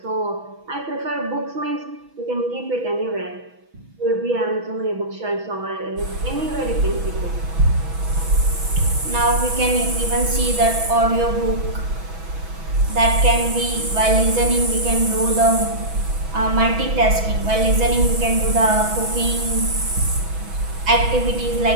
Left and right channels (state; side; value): late; left; 6.1 ms